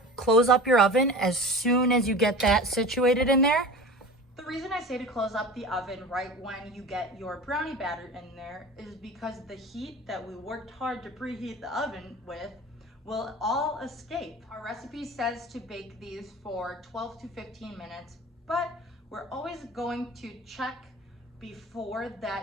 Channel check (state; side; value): normal; both; correlation 0.35